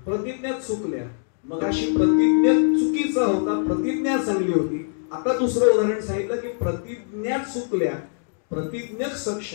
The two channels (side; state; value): right; silent; 63 dB below the other